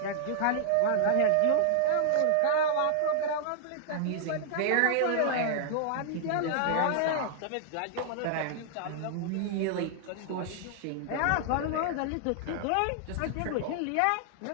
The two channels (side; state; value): both; different; correlation -0.01